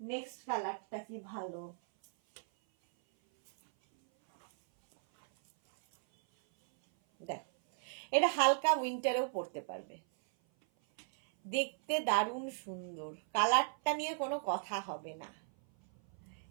নেক্সট কালারটা কি ভালো, দেখো এটা হালকা উইন্টারেও পরতে পারবে, দেখতে দারুণ সুন্দর, কালারটা নিয়ে কোনো কথা হবে না।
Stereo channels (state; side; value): silent; left; 54 dB below the other